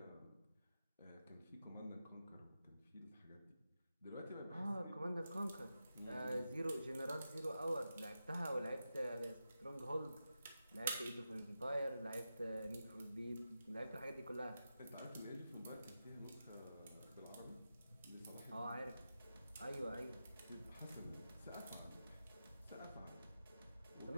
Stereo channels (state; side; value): inverted; both; correlation -0.90